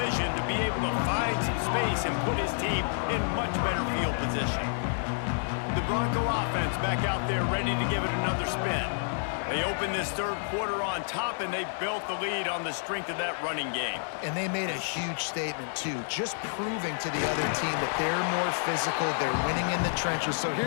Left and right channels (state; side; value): silent; right; digital silence